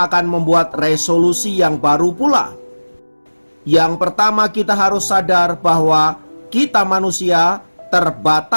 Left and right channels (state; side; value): inverted; both; correlation -1.00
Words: membuat resolusi yang baru pula. Yang pertama, kita harus sadar bahwa kita manusia